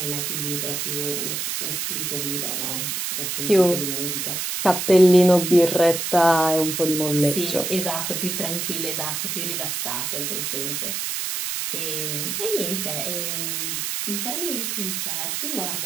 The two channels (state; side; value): noise; right; hiss, 2 dB below the sound